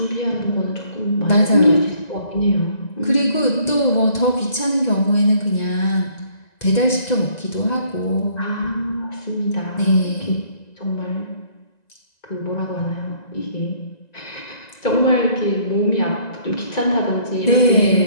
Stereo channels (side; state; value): right; late; 1.9 ms